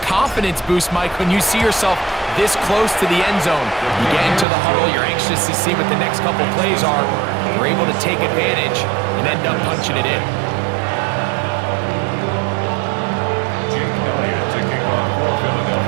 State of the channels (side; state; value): left; drops out; at 4.5 s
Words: confidence boost, Mike, when you see yourself this close to the end zone. You get into the huddle, you're anxious to see what the next couple plays are. You're able to take advantage and end up punching it in.